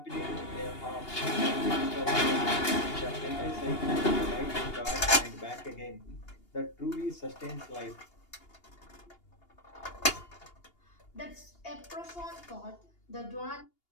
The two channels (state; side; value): late; right; 2.8 ms